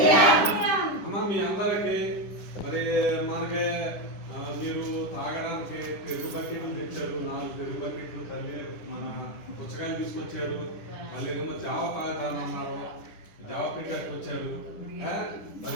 అమ్మ మీ అందరికి మరి మనకి మీరు తాగడానికి పెరుగు బకెట్లు తెచ్చారు, 4 పెరుగు బకెట్లు తల్లి మన పుచ్చకాయలు తీసుకొచ్చారు. మళ్ళీ ఏమో జావ తాగుతానన్నారు, జావ పెట్టారు వచ్చారు.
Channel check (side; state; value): right; late; 10 ms